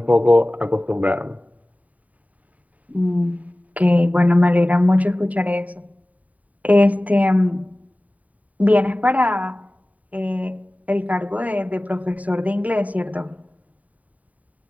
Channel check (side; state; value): left; late; 0.071 ms